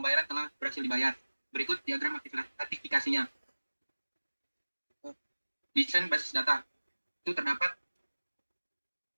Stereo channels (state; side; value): inverted; both; correlation -1.00